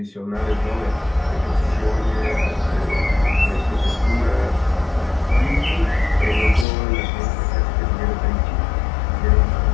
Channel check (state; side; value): drops out; right; at 6.7 s